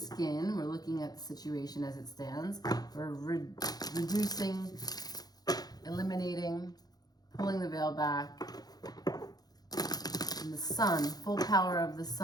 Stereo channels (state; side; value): late; right; 0.19 ms